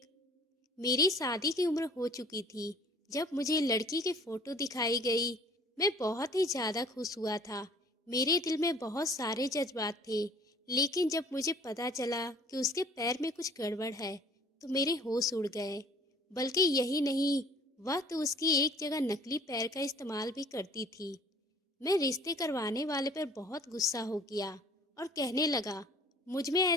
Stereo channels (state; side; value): normal; both; correlation 0.52